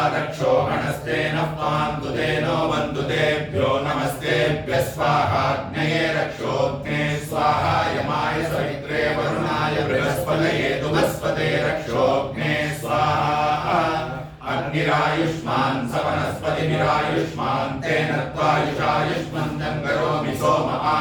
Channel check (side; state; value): both; identical; correlation 1.00